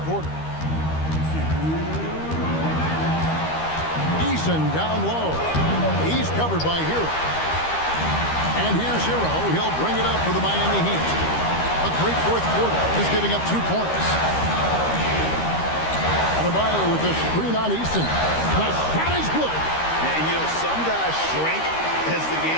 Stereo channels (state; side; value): late; right; 13 ms